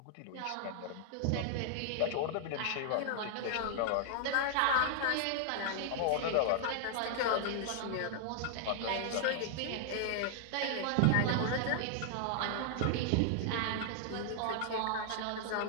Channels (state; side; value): different; both; correlation 0.00